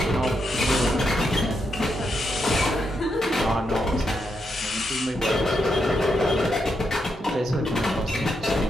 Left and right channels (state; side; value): normal; both; correlation 0.82